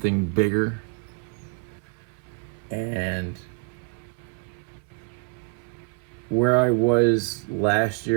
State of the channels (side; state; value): left; quieter; 37.0 dB